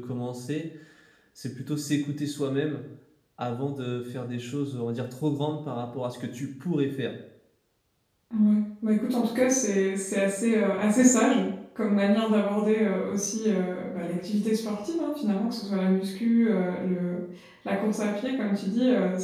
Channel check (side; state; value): both; identical; correlation 1.00